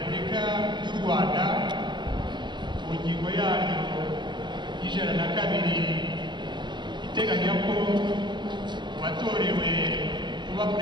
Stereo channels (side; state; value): left; late; 0.22 ms